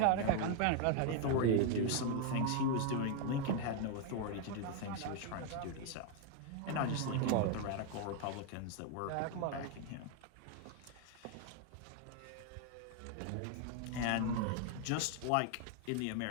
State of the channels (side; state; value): both; different; correlation 0.01